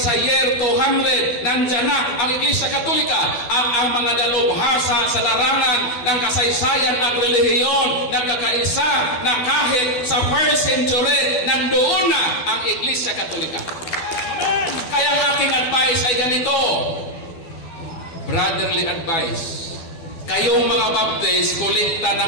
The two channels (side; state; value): right; late; 12 ms